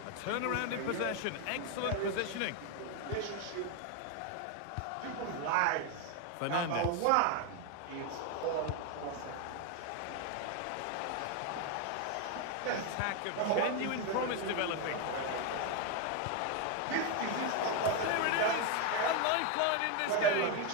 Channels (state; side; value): different; both; correlation 0.01